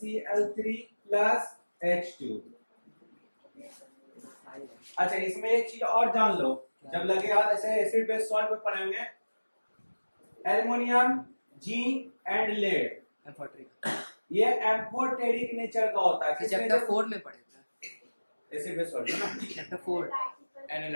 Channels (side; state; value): both; inverted; correlation -1.00